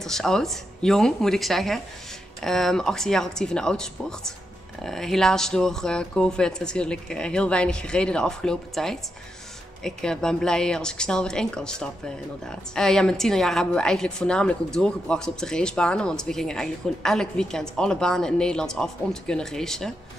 oud. Jong, moet ik zeggen. 18 jaar actief in de autosport. Helaas door COVID natuurlijk heel weinig gereden de afgelopen tijd. Ik ben blij als ik snel weer in kan stappen, inderdaad. Ja, mijn tienerjaren hebben we eigenlijk voornamelijk ook doorgebracht op de racebanen. Want we gingen eigenlijk gewoon elk weekend alle banen in Nederland af om te kunnen racen.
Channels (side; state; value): both; normal; correlation 0.84